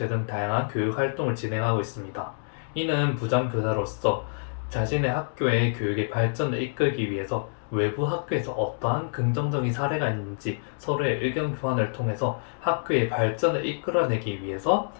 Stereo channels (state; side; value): silent; right; digital silence